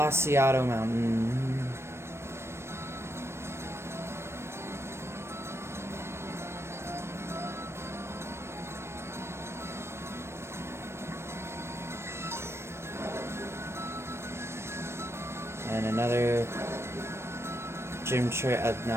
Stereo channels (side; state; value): left; late; 0.13 ms